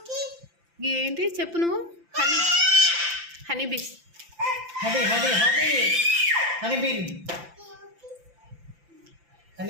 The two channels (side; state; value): left; late; 5.9 ms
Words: ఏంటి చెప్పు నువ్వు. Honey bees. Honey bean.